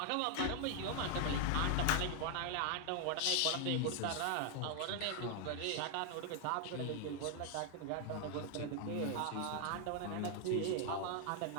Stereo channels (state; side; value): different; both; correlation 0.00